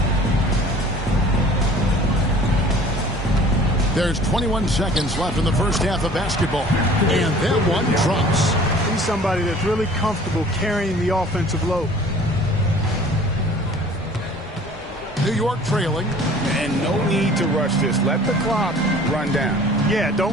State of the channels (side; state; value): both; normal; correlation 0.49